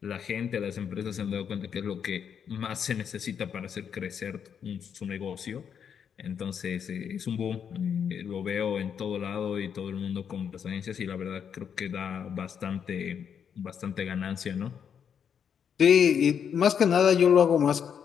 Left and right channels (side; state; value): right; quieter; 7.7 dB